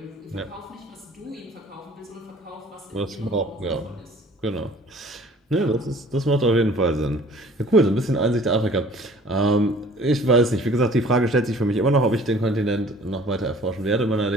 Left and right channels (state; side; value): normal; both; correlation 0.51